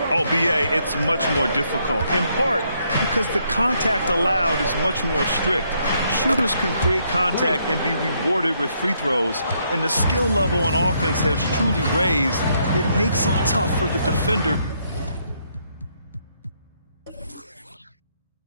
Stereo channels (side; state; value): both; inverted; correlation -0.73